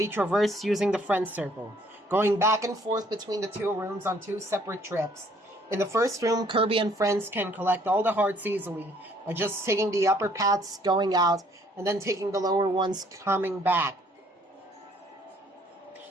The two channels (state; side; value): normal; both; correlation 0.62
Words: traversed using the Friends Circle, going back and forth between the 2 rooms on 2 separate trips. In the first room, Kirby and friends can collect all the hearts easily by just taking the upper paths going out and then taking the lower ones coming back.